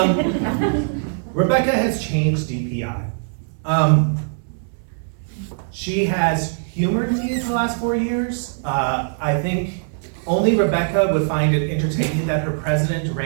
Rebecca has changed DPI. She has humored me for the last 4 years. I think only Rebecca would find it entertaining that her president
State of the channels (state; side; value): silent; left; 65 dB below the other